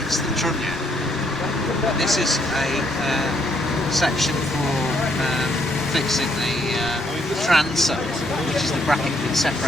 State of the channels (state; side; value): normal; both; correlation 0.71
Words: the trunnion. This is a section for fixing the transom, which is the bracket that